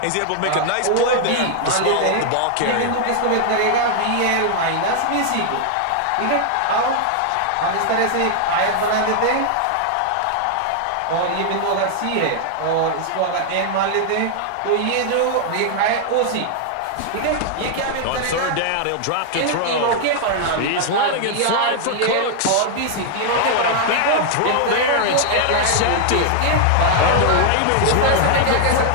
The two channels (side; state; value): both; different; correlation 0.00